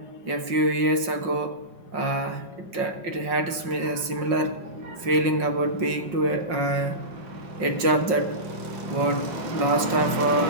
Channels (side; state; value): left; late; 5.5 ms